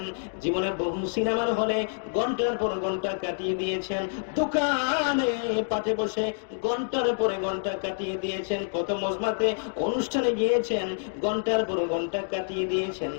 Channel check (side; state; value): right; silent; digital silence